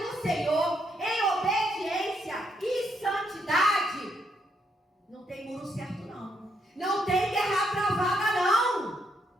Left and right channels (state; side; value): normal; both; correlation 0.76